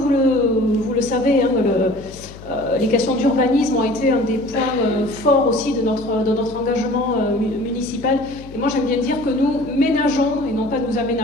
le savez, hein, les questions d'urbanisme ont été un des points forts aussi de notre engagement municipal. Et moi j'aime bien dire que nous ménageons, et non pas nous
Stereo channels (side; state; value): left; noise; hum, 17 dB below the sound